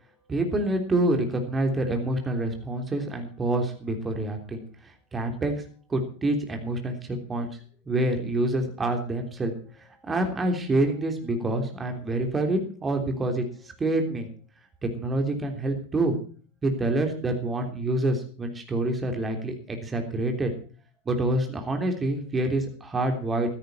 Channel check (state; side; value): normal; both; correlation 0.51